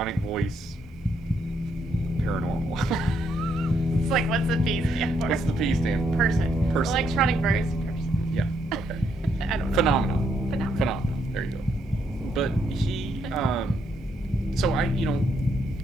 voice paranormal." It's like, what's the P stand for? What's the P stand for? Person. Person. Electronic voice person. Yeah, okay. I don't know. Phenomenon. There you go. But he, so and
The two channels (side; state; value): both; normal; correlation 0.75